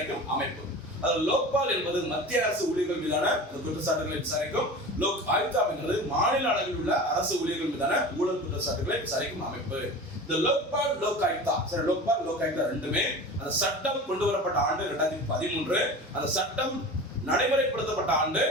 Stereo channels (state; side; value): normal; both; correlation 0.34